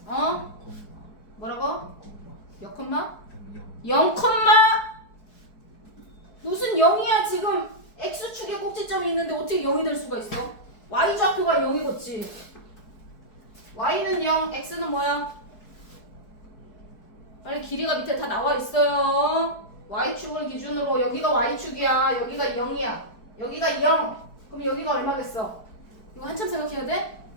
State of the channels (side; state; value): right; late; 4.6 ms